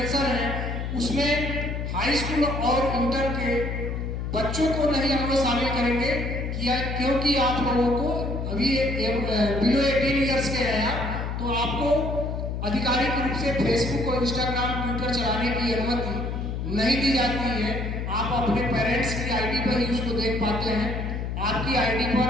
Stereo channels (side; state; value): left; noise; hum, 3 dB below the sound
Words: हैं उसमें हाई स्कूल और इंटर के बच्चों को नहीं हम लोग शामिल करेंगे क्योंकि आप लोगों को अभी बिलो 18 ईयर्स के हैं आप, तो आपको आधिकारिक रूप से फेसबुक और इंस्टाग्राम, ट्विटर चलाने की अनुमति नहीं दी जाती है। आप अपने पेरेंट्स की आईडी पर ही उसको देख पाते हैं। आपकी आईडी पर,